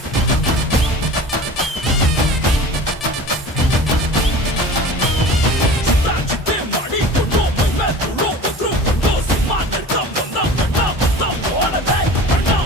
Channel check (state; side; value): normal; both; correlation 0.39